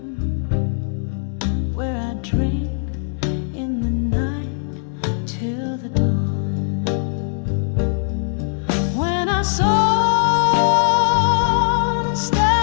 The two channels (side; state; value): right; silent; 62 dB below the other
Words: where I drink in the night till the dawn. When I saw